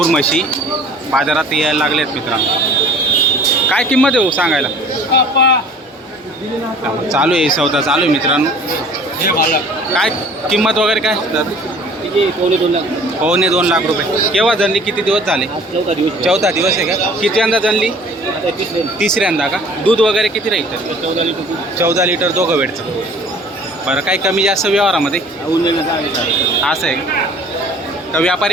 म्हशी बाजारात यायला लागल्या आहेत मित्रांनो. काय किंमत आहे हो सांगायला? चालू आहे सौदा चालू आहे मित्रांनो. काय किंमत वगैरे काय? 2.25 लाख रुपये. केव्हा जनली? किती दिवस झाले? चौथा दिवस आहे का? किती जनली? तिसऱ्यांदा का? दूध वगैरे किती राहील? 14 लिटर दोघं वेळचं. बरं, काही कमी जास्त व्यवहारामध्ये असं आहे का?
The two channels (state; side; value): normal; both; correlation 0.49